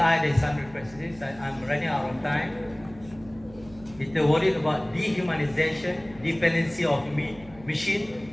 dari Sundry Practices. I'm running out of time. Kita worried about dehumanization, dependency of machine,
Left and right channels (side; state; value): right; noise; hum, 21 dB below the sound